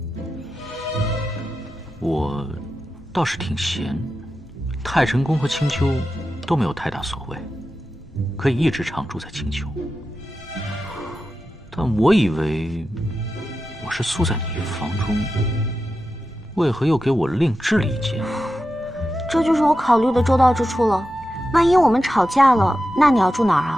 我倒是挺闲，太晨宫和青丘都没有太大所谓，可以一直常住在青丘。但我以为我是宿在你房中，为何又给我另置了一间？这就是我考虑的周到之处了。万一我们吵架了，那你要住哪儿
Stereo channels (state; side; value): normal; both; correlation 0.91